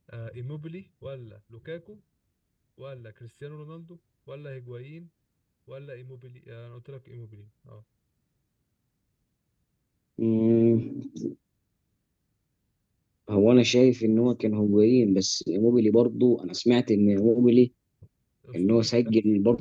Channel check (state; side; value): identical; both; correlation 1.00